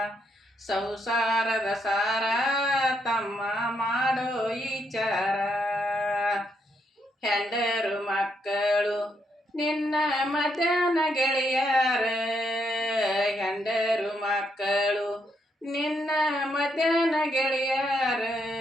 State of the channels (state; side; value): normal; both; correlation 0.77